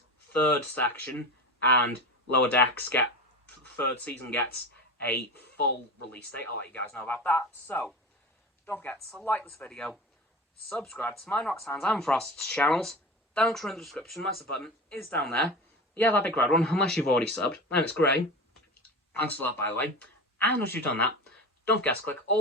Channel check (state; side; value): normal; both; correlation 0.29